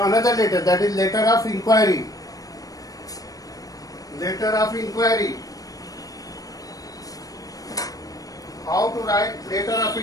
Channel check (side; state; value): right; late; 0.17 ms